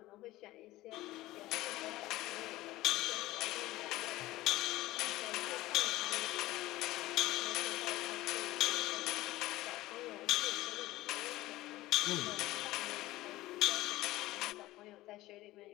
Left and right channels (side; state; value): right; quieter; 17.3 dB